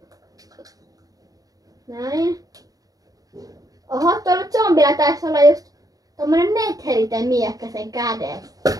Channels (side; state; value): left; late; 0.18 ms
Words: Näin. Oho, tuolla zombilla taisi olla just tommonen netheriten miekkä sen kädessä.